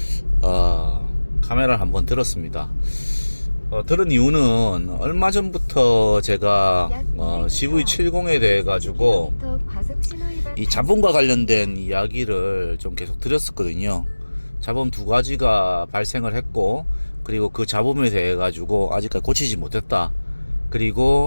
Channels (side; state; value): both; inverted; correlation -1.00